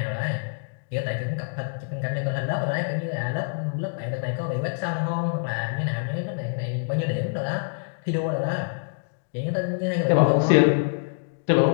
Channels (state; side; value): silent; right; digital silence